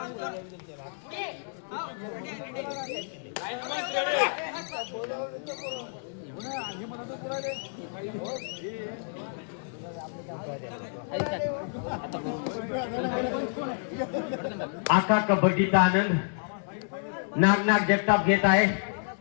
आका कबड्डीचा आनंद नाग जगताप घेत आहे.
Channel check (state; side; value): silent; right; digital silence